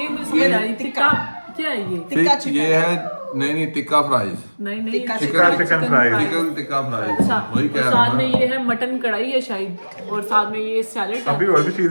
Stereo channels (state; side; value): inverted; both; correlation -1.00